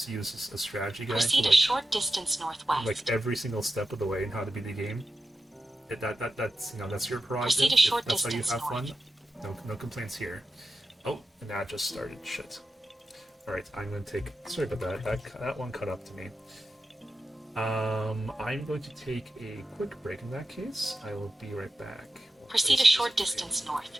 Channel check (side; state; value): both; normal; correlation 0.91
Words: to use a strategy guide Proceed for a short distance northwest. like every single step of the way in how to beat the game, that's you know that's your prerogative. Proceed a short If that's how you distance have fun. north. No complaints here. Oh, and that just started. Shit. Alright, I'm going to take... Sorry about that. That one cut up to me. I'm going to take a quick break in that case. I will be right back. Proceed a short distance north.